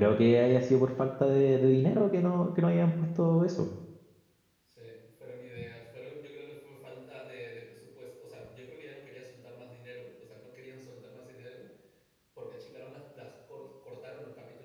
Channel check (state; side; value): identical; both; correlation 1.00